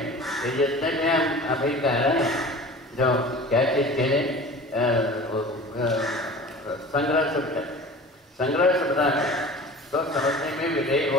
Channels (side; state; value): both; normal; correlation 0.40